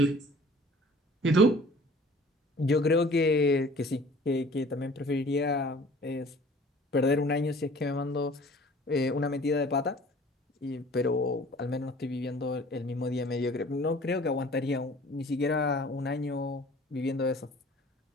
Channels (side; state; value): both; normal; correlation 0.49